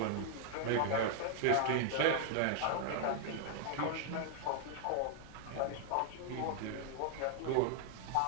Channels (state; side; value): different; both; correlation 0.00